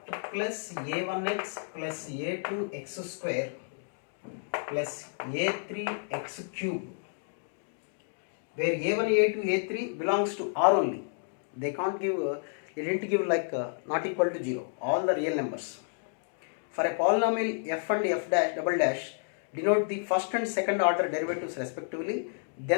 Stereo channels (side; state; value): right; silent; digital silence